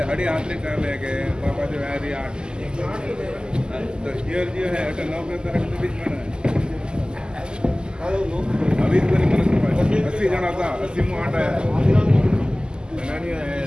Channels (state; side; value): late; left; 0.046 ms